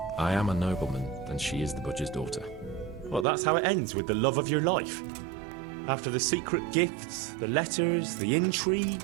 I am a nobleman, and she is the butcher's daughter. Well, that's how it ends, with the love of your life. After the secret gifts, the letters, the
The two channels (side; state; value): left; drops out; at 3.2 s